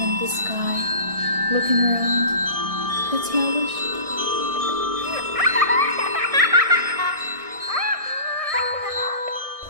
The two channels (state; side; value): late; left; 1.6 ms